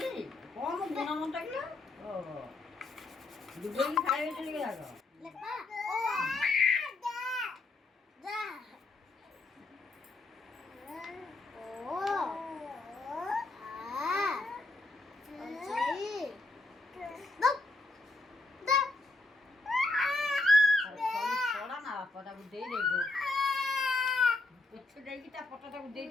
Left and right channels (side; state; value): right; quieter; 3.1 dB